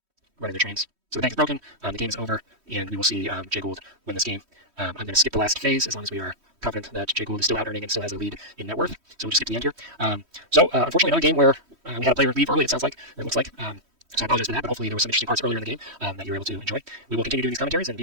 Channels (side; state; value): left; late; 3.1 ms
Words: their trains. So the bank is broken, the game is over, and we will see Jay Gould win this game. I'm going to skip the last phase as long as we are confident that Jay Gould is still out-earning and still has a lead in net worth. So we'll just skip to the end here. Unfortunately, another game where we had a player leave early, it sounds like, or it looks like. So I apologize for that, but hopefully there were some interesting parts earlier in the game that you were able to enjoy. We will continue doing these commentaries and